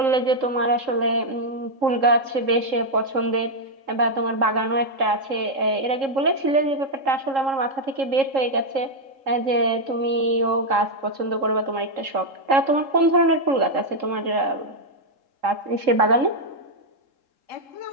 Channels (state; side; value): late; left; 3.7 ms